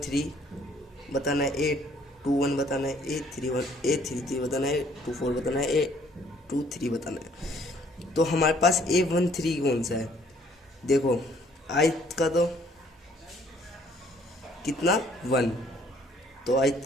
बताना है, A21 बताना है, A33 बताना है, A24 बताना है, A23 बताना है। तो हमारे पास A13 कौन सा है, देखो आयत का तो कितना 1, तो आयत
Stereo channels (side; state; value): both; normal; correlation 0.61